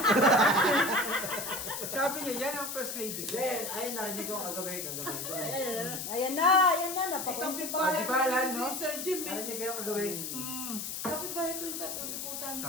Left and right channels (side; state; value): left; noise; hiss, 5 dB below the sound